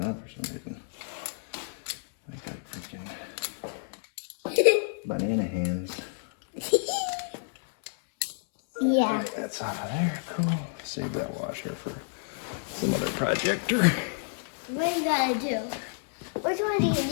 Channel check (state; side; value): silent; right; 58 dB below the other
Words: on for some reason. I got freaking banana hands. Yeah. Right, that's out of there. Cool. Save that washer for some other projector. What do you gotta do? Which one do you